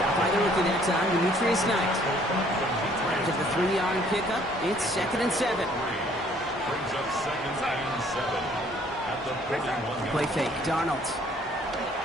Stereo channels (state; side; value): normal; both; correlation 0.60